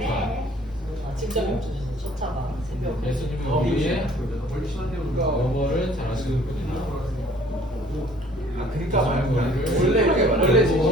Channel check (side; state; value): both; normal; correlation 0.55